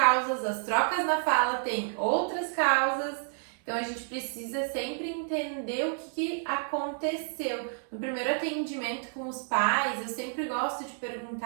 as trocas na fala tem outras causas. Então, a gente precisa sempre entender o que aconteceu. No primeiro atendimento com os pais, eu sempre gosto de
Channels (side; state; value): left; silent; 58 dB below the other